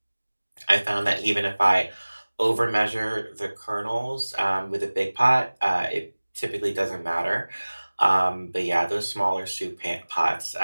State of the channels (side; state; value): both; inverted; correlation -1.00